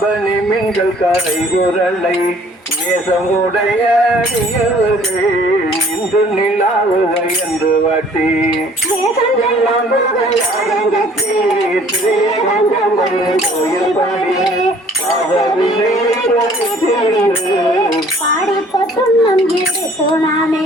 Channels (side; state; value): both; normal; correlation 0.56